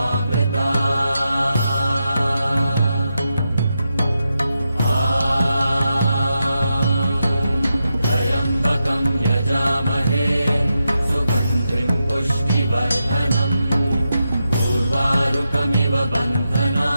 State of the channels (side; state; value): both; inverted; correlation -0.87